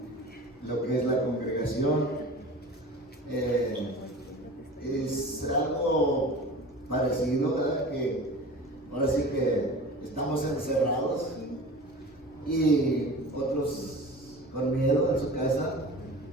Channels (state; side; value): normal; both; correlation 0.37